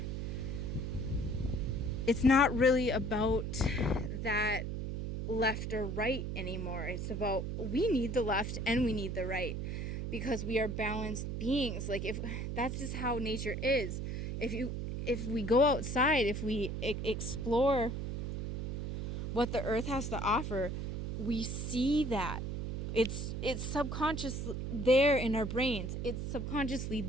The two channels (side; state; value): right; noise; hum, 3 dB below the sound